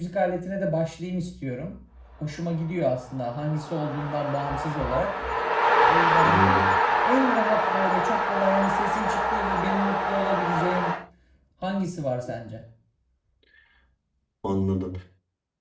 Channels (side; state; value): both; identical; correlation 1.00